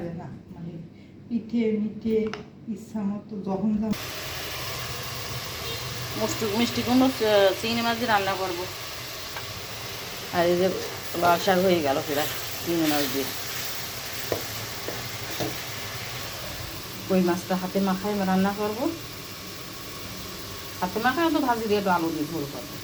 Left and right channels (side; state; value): both; identical; correlation 1.00